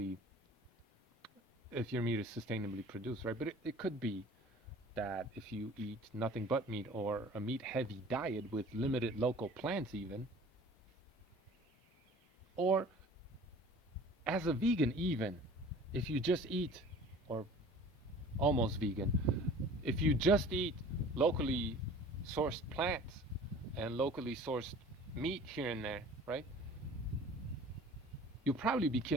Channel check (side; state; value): both; normal; correlation 0.45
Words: if your meat is sustainably produced, right? But it could be that if you eat nothing but meat or a meat heavy diet with limited local plants, even, or as a vegan, even if you just eat, or almost vegan, if you just eat locally sourced plants and locally sourced meat here and there, right? You'll probably be